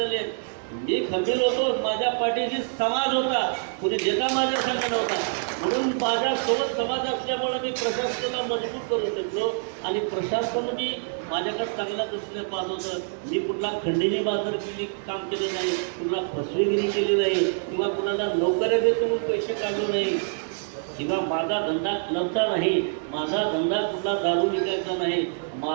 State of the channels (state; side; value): silent; left; digital silence